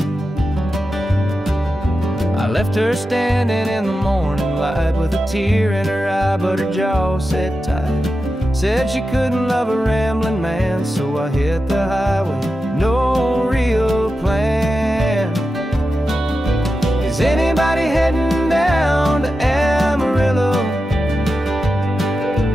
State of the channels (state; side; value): normal; both; correlation 0.91